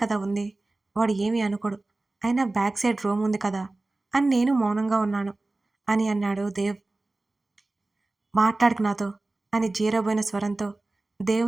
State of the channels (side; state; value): left; quieter; 3.0 dB